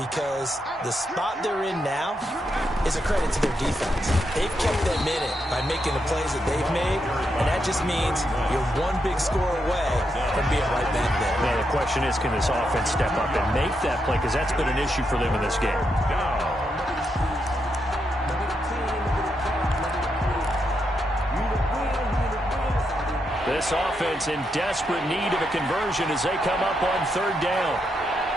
the spot they're in now is a credit to their defense. They've kept them in it by making the plays that they've made, and that just means you're one big score away from being right back there. Now, the question is, can this offense step up and make that play? Because that's been an issue for them in this game. This offense in desperate need of a conversion as they come up on 3rd down.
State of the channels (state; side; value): normal; both; correlation 0.82